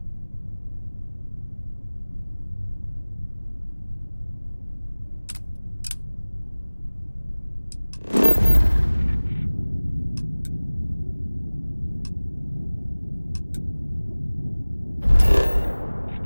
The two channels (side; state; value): both; inverted; correlation -1.00